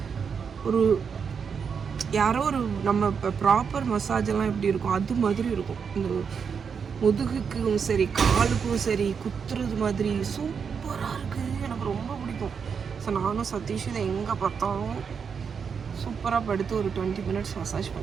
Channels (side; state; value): left; quieter; 6.4 dB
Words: ஒரு யாரோ ஒரு நம்ம இப்போ ப்ராப்பர் மசாஜ் எல்லாம் எப்படி இருக்கும் அது மாதிரி இருக்கும். இந்த முதுகுக்கும் சரி காலுக்கும் சரி குத்துறது மாதிரி சூப்பராக இருக்குது. எனக்கு ரொம்ப பிடிக்கும். ஸோ நானும் சதீஷ் இதை எங்கே பார்த்தாலும் சூப்பராக படுத்து ஒரு 20 மினிட்ஸ் மசாஜ்